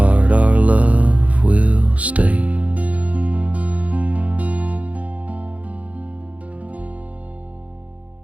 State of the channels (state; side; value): late; left; 0.067 ms